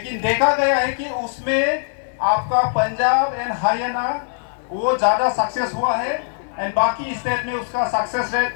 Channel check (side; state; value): right; silent; digital silence